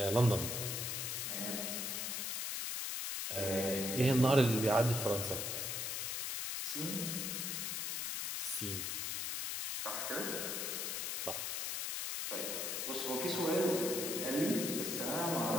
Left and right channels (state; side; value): noise; left; hiss, 2 dB below the sound